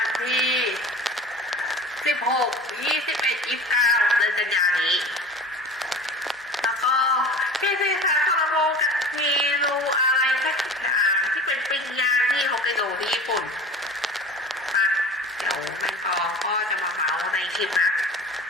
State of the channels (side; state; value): both; normal; correlation 0.38